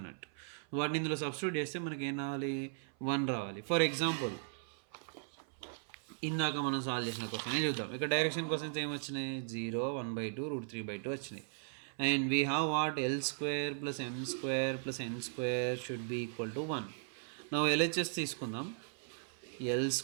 వాటిని ఇందులో సబ్స్టిట్యూట్ చేస్తే మనకి ఏం రావాలి? 1 రావాలి. ఫర్ ఎగ్జాంపుల్ ఇందాక మనం సాల్వ్ చేసిన క్వశ్చన్ చూద్దాం. ఇక్కడ డైరెక్షన్ క్వశ్చన్స్ ఏమొచ్చినాయి? 0, 1/2, √3/2 వచ్చినాయి. And we have what? L² + M² + N² should be equal to 1. నా LHS తీసుకుందాం. L²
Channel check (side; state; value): left; silent; 53 dB below the other